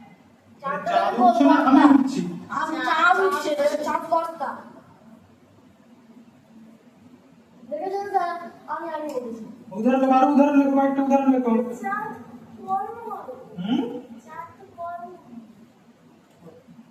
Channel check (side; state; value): both; identical; correlation 1.00